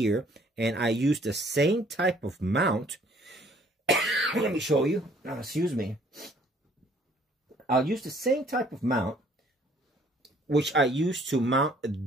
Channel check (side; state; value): both; normal; correlation 0.60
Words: And I use the same type of mount. Let me show you. Excuse me. I'll use the same type of mount which I use to mount